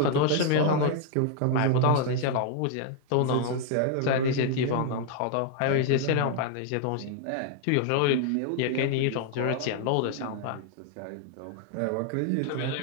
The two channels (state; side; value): different; both; correlation 0.00